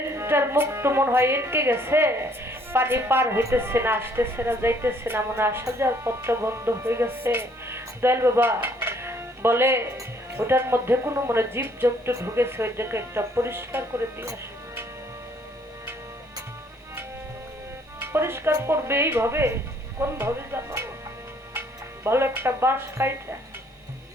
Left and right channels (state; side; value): normal; both; correlation 0.64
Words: মুখ তো মনে হয় আটকে গেছে, পানি পার হইতেছে না, আসতেছে না, যাইতেছে না, মনে আসা যাওয়ার পথটা বন্ধ হয়ে গেছে। দয়াল বাবা বলে, ওটার মধ্যে কোনো মনে জীব জন্তু ঢুকেছে, ওইটাকে একটা পরিষ্কার করে দিয়ে আসো। পরিষ্কার করবে এইভাবে, কোন ভাবে জানো? ভালো একটা বাঁশ কাইটা